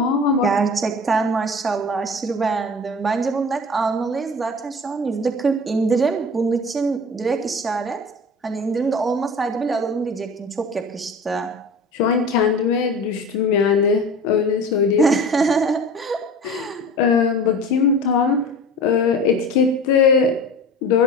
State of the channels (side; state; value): both; normal; correlation 0.37